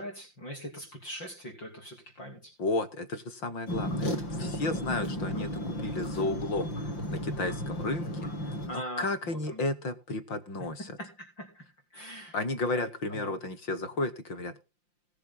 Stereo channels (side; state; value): right; late; 5.7 ms